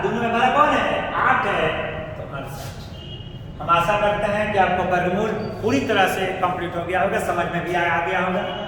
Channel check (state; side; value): identical; both; correlation 1.00